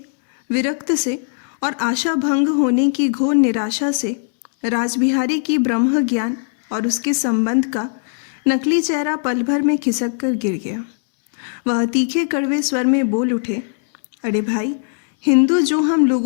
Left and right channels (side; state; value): right; silent; 67 dB below the other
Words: विरक्त से और आशा भंग होने की घोर निराशा से राजबिहारी की ब्रह्म ज्ञान और उसके संबंध का नकली चेहरा पल भर में खिसक कर गिर गया। वह तीखे कड़वे स्वर में बोल उठे, अरे भाई, हिंदू जो हम